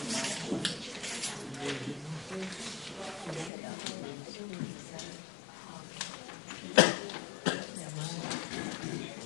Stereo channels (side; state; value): right; drops out; at 3.5 s